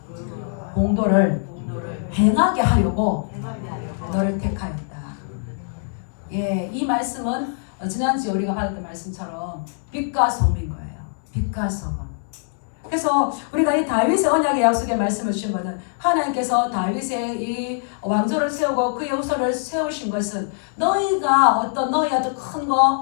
공도를 행하게 하려고 너를 택하였다. 예, 이 말씀은 지난주에 우리가 받았던 말씀처럼 빛과 소금인 거예요. 빛과 소금. 그래서 우리가 이 다윗의 언약의 약속의 말씀을 주신 것은 하나님께서 다윗의 이 왕조를 세우고 그의 후손을 세우신 것은 너희가 너희 어떤 큰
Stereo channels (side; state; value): right; silent; 64 dB below the other